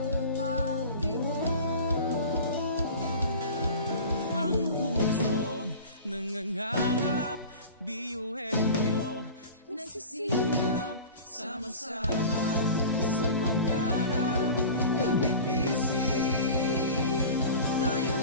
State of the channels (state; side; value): inverted; both; correlation -0.36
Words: pagtibok Ang pusong nangangarap, biyuhin nyo Nagsisikap sama-sama sa pangarap. Kapit bisig,